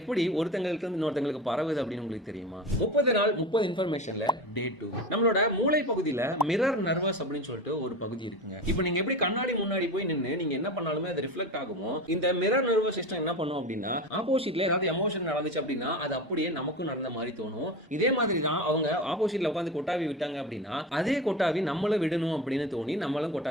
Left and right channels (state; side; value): normal; both; correlation 0.27